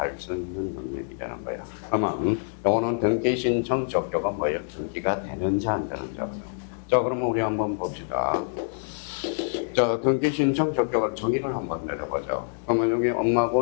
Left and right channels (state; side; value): silent; right; digital silence